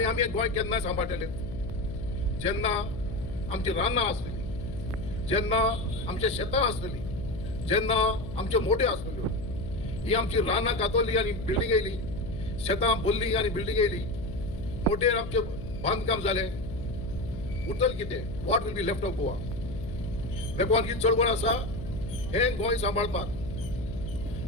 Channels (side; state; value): left; noise; hum, 9 dB below the sound